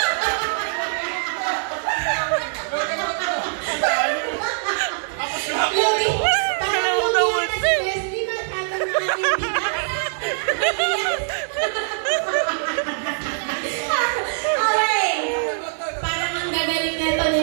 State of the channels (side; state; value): left; silent; digital silence